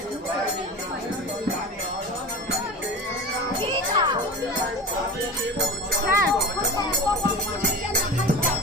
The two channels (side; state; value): both; normal; correlation 0.31